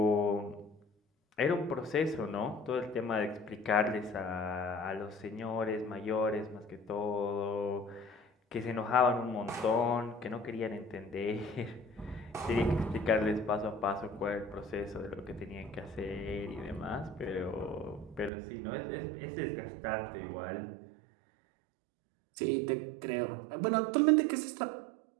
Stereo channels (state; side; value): drops out; left; at 18.3 s